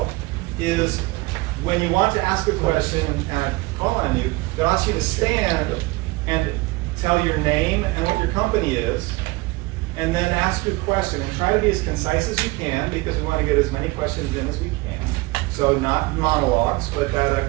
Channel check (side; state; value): left; quieter; 22.7 dB